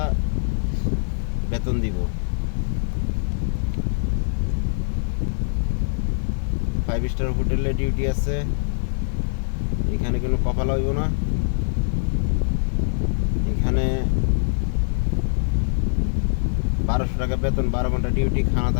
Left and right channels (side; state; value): right; silent; digital silence